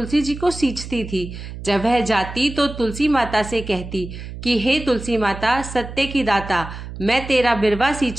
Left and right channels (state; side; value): noise; right; hum, 11 dB below the sound